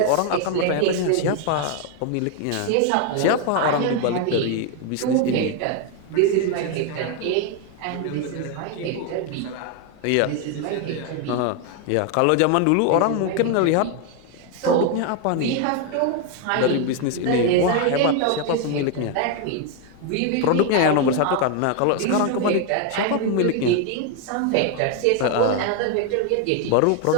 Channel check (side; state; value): both; different; correlation 0.01